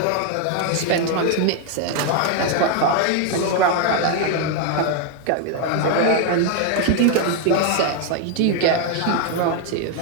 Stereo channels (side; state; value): both; different; correlation 0.01